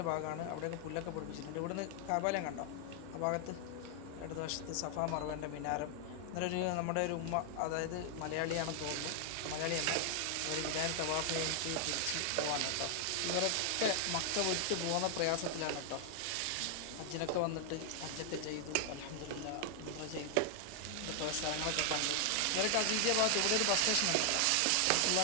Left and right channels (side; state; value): both; different; correlation 0.00